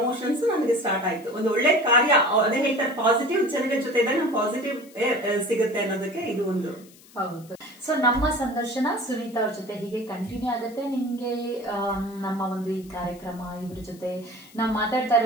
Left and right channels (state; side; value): noise; left; hiss, 24 dB below the sound